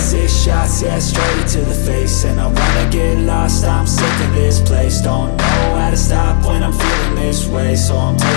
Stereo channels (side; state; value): right; silent; 68 dB below the other